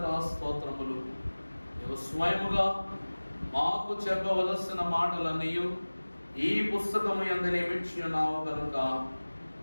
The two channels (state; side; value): inverted; both; correlation -1.00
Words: స్తోత్రములు. నీవు స్వయముగా మాకు చెప్పవలసిన మాటలన్నీ ఈ పుస్తకము యందు నియమించి ఉన్నావు కనుక